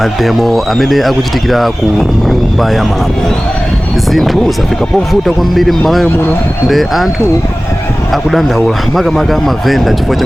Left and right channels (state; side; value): normal; both; correlation 0.98